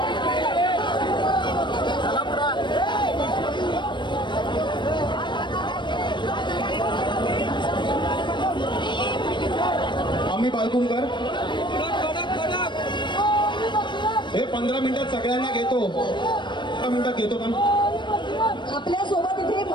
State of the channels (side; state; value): right; late; 0.22 ms